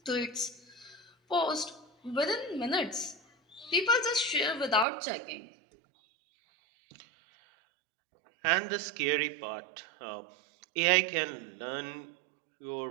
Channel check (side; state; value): left; drops out; at 4.9 s